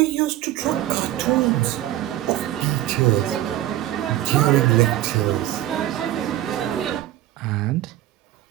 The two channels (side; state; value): left; quieter; 14.0 dB